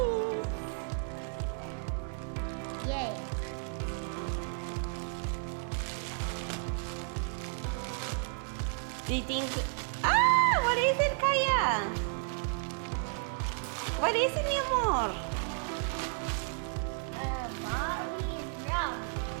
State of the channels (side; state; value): left; silent; 56 dB below the other